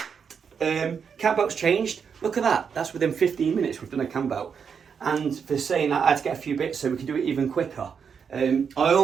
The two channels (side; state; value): left; quieter; 6.6 dB